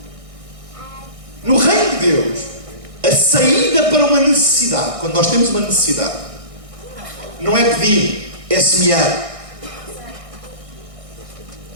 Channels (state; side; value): late; left; 1.6 ms